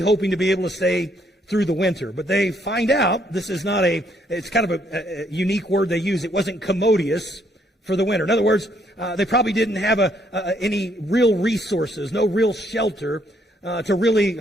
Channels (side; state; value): both; normal; correlation 0.70